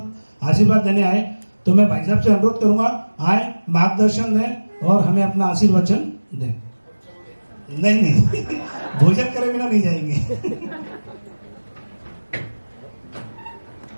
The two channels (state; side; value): inverted; both; correlation -1.00